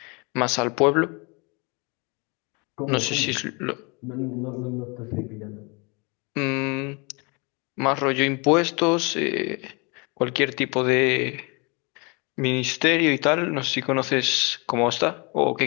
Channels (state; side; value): quieter; right; 30.3 dB